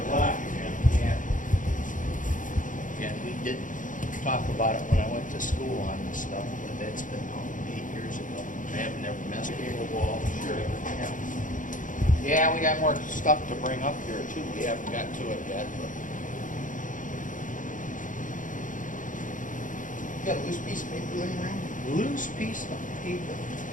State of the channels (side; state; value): right; late; 0.38 ms